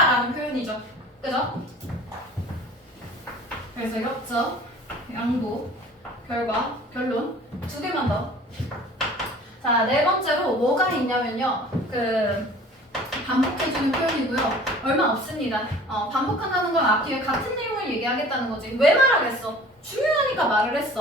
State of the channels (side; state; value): both; normal; correlation 0.46